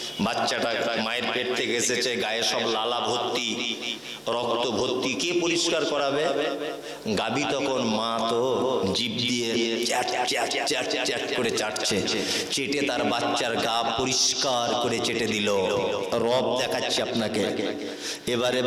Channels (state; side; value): identical; both; correlation 1.00